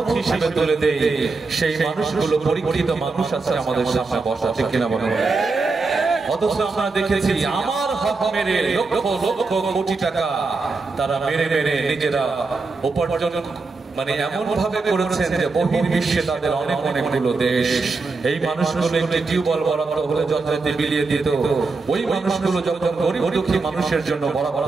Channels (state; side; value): quieter; left; 4.0 dB